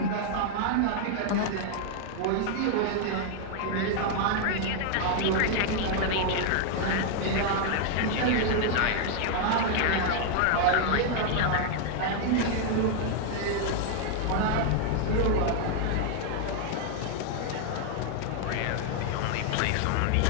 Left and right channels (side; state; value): both; different; correlation 0.00